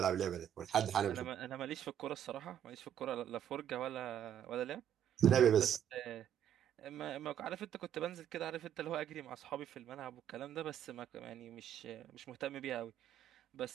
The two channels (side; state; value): left; quieter; 9.7 dB